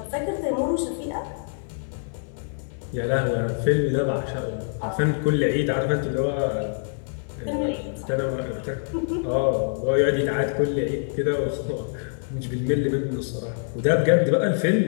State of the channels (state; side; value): silent; right; 62 dB below the other